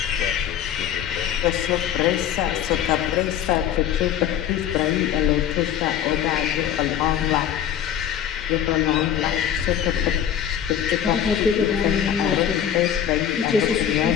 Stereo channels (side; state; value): right; quieter; 9.7 dB